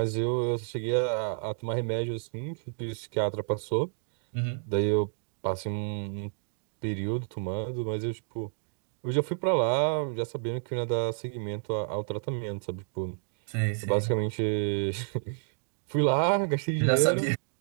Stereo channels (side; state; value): left; silent; digital silence